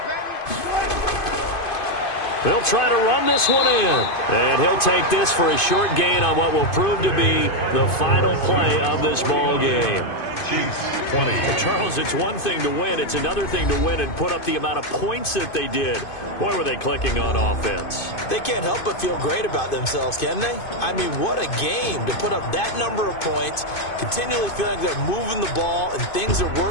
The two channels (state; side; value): late; right; 2.5 ms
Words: They'll try to run this one in. And he'll take this for a short gain on what will prove to be the final play of this ball game. Chiefs 20. Charles, it's one thing to win. It's another thing to win and put up the amount of points that they did. Boy, were they clicking on offense. They can't help but feel great about themselves, can they? I mean, what a game to put up that number of points, continually feeling like they're moving the ball and things are